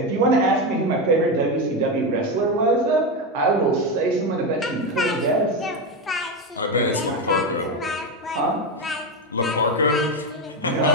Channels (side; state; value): both; normal; correlation 0.13